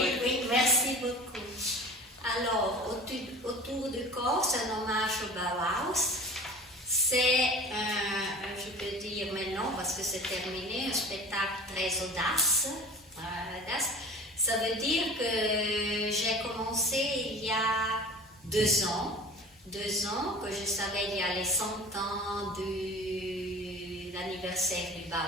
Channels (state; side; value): normal; both; correlation 0.39